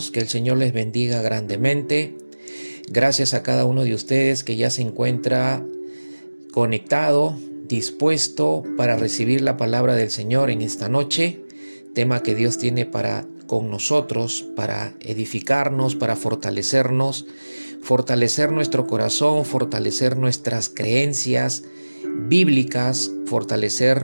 que el Señor les bendiga grandemente. Gracias a cada uno de ustedes que ya se encuentra conectado, dispuesto para recibir la palabra del Señor en esta noche, tema que Dios tiene para con nosotros, para edificarnos, para fortalecernos, fortalecer nuestro corazón, fortalecer nuestras creencias bíblicas,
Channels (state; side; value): inverted; both; correlation -1.00